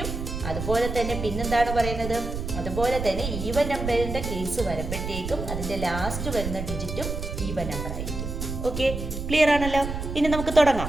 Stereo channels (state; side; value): noise; right; rumble, 5 dB below the sound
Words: അതുപോലെ തന്നെ പിന്നെന്താണ് പറയുന്നത്? അതുപോലെ തന്നെ ഈവൻ നമ്പറിന്റെ കേസ് വരുമ്പോഴത്തേക്കും അതിന്റെ ലാസ്റ്റ് വരുന്ന ഡിജിറ്റും ഈവൻ നമ്പർ ആയിരിക്കും. ഓക്കെ, ക്ലിയർ ആണല്ലോ? ഇനി നമുക്ക് തുടങ്ങാം.